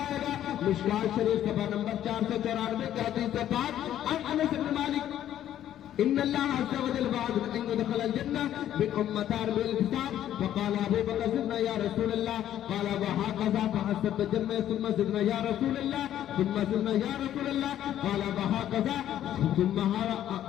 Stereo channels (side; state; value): right; quieter; 11.5 dB